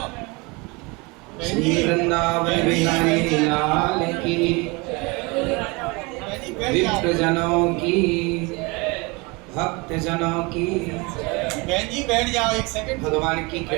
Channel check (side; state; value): left; quieter; 26.9 dB